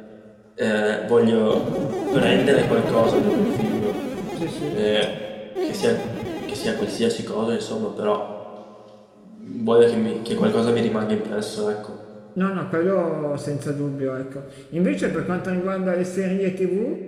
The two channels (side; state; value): both; identical; correlation 1.00